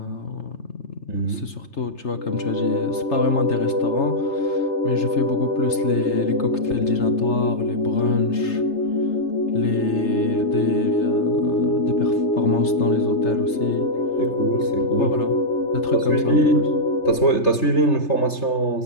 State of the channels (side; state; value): right; late; 3.3 ms